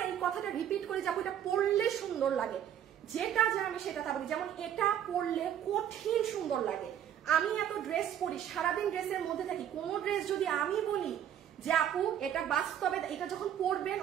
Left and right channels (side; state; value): left; quieter; 10.1 dB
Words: এই কথাটা রিপিট করে যাবো, এটা পরলে সুন্দর লাগে, যেটা যা আমি সেটা তা বলি। যেমন এটা পরলে কঠিন সুন্দর লাগে। আমি এত ড্রেস পরি, সারাদিন ড্রেসের মধ্যে থাকি, কোন ড্রেস যদি আমি বলি যে আপু এটা বাস্তবে, এটা যখন পরবেন